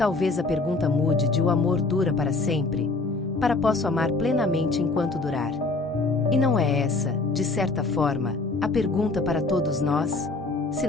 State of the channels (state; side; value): quieter; right; 3.5 dB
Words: a pergunta mude de "o amor dura para sempre" para "posso amar plenamente enquanto durar". E não é essa, de certa forma, a pergunta para todos nós? Se